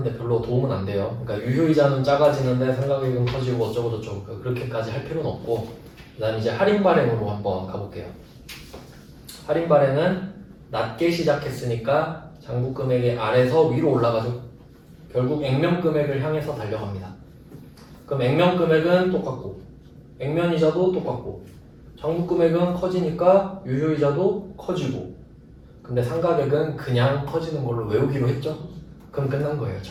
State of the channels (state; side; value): identical; both; correlation 1.00